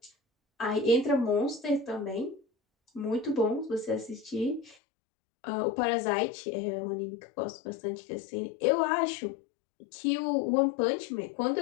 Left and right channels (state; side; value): drops out; right; at 4.8 s